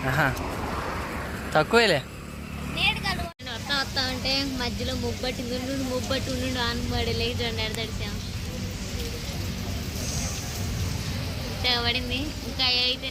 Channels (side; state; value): both; identical; correlation 1.00